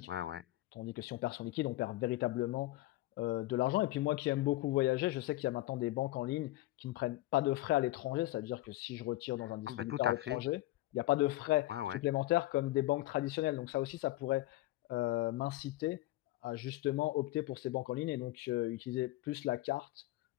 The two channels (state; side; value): quieter; right; 17.3 dB